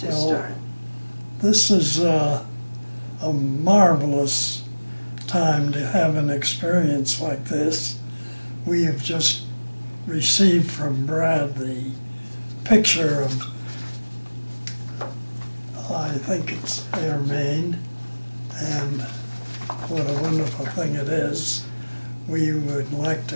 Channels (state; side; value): inverted; both; correlation -1.00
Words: start. This is a marvelous time to have an experience like this. We have just received from Brad the picture of, I think it's Irmine, and what a wonderful thing it is. We would like